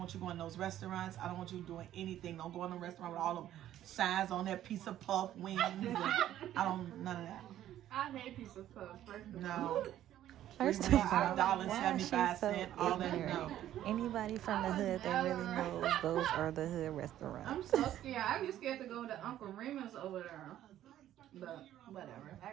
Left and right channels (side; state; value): left; quieter; 12.3 dB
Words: you going to those restaurants. I don't want you doing anything. Don't go in a restaurant with all them signs on that piece of puff wings. And I don't, none of that. I hate piece of puff, first of all. No. First of all, $5.75, all that. No. Anybody from the hood that really knows those are the hood restaurants. I'm so scared. I'd be scared to go to Uncle Remus over there. But whatever. I